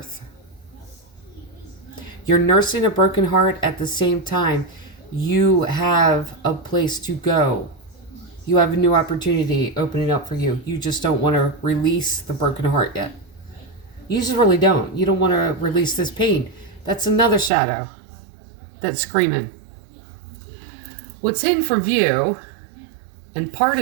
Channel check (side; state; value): left; drops out; at 17.5 s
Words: You're nursing a broken heart at the same time. You have a place to go. You have a new opportunity opening up for you. You just don't want to release the broken heart yet. You just really don't. You don't want to release this pain. That's another shadow that's screaming. What's hidden from view, and part